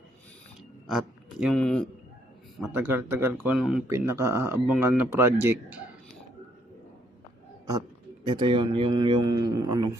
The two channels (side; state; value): both; normal; correlation 0.70